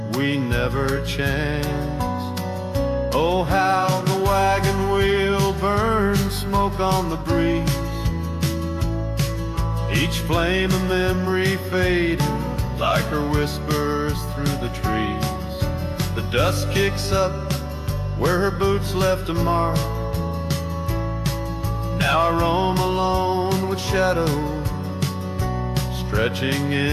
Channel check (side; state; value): both; identical; correlation 1.00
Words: we never chanced. Oh, how the wagon wheel burns smoke on the breeze, each flame a memory fading like her whispers through the trees. The dust kicks up where her boots left a mark. Now I roam alone with shadows stretching